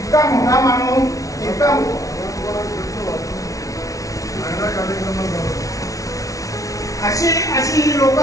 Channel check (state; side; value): late; right; 0.17 ms